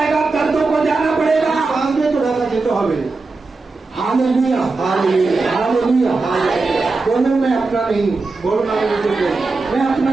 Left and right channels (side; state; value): left; quieter; 3.8 dB